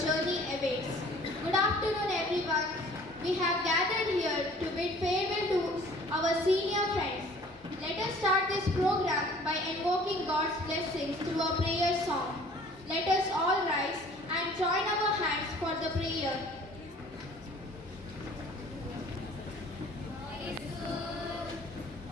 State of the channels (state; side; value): normal; both; correlation 0.51